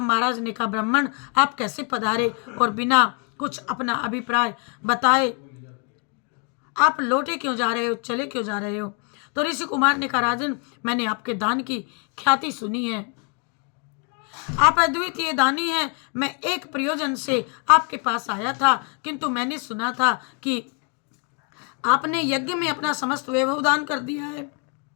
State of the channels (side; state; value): right; quieter; 38.1 dB